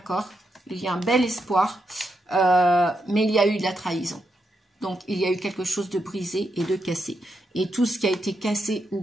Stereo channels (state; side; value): normal; both; correlation 0.83